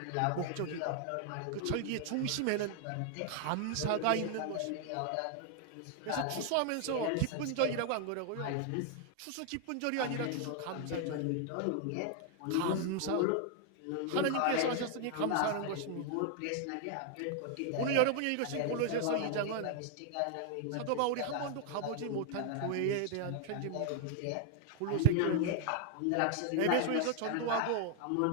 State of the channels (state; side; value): different; both; correlation 0.00